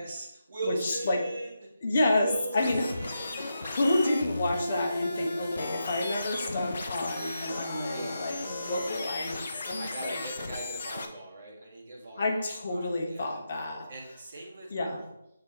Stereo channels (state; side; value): inverted; both; correlation -0.86